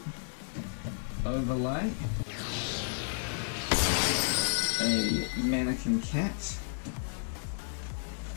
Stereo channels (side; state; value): right; silent; 56 dB below the other